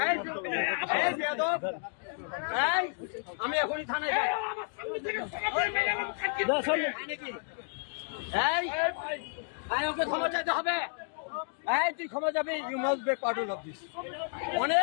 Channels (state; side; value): silent; right; 57 dB below the other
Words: আমি এখনই থানায় যাই। ওকে ক্ষমা চাইতে হবে। তুই ক্ষমা যাবে। You must be part of this.